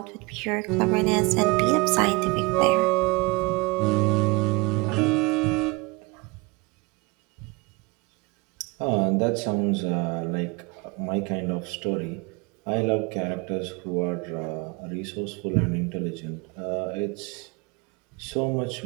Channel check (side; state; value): left; quieter; 25.9 dB